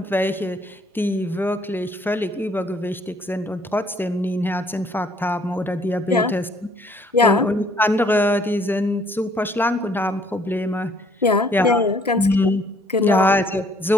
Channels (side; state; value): both; normal; correlation 0.62